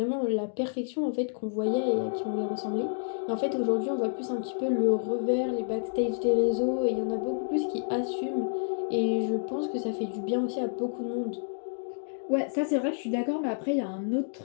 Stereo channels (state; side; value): silent; right; digital silence